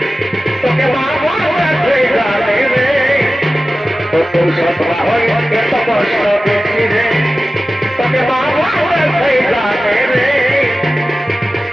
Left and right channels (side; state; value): both; normal; correlation 0.95